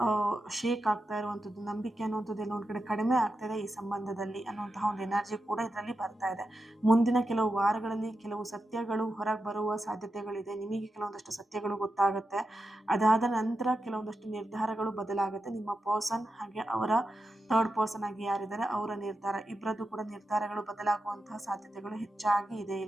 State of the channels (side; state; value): both; normal; correlation 0.89